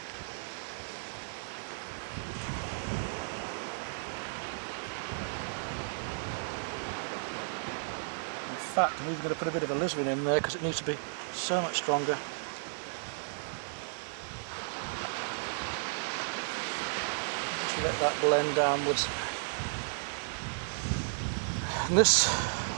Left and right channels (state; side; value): silent; left; digital silence